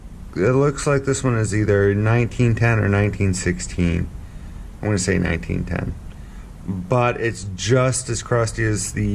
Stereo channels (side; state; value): both; identical; correlation 1.00